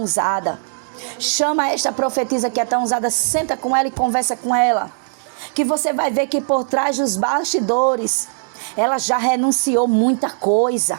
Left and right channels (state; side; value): silent; left; digital silence